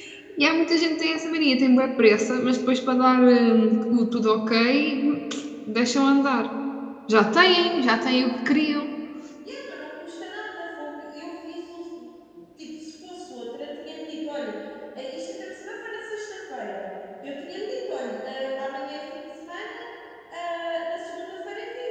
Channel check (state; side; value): identical; both; correlation 1.00